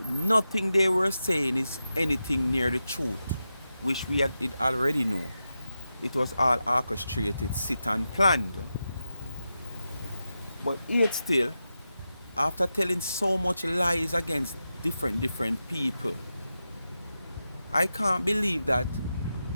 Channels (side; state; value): both; inverted; correlation -0.90